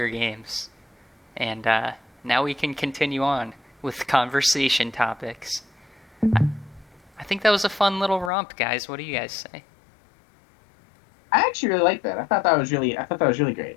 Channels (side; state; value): right; drops out; at 8.3 s